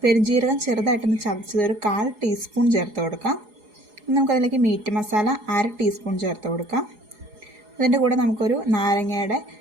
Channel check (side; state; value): left; late; 4.8 ms